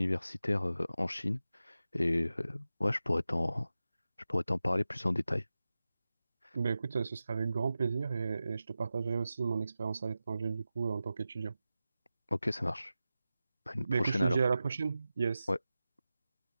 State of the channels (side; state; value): both; inverted; correlation -0.94